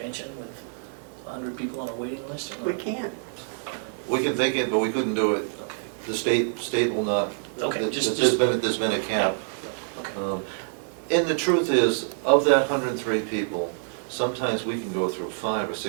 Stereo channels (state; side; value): silent; left; digital silence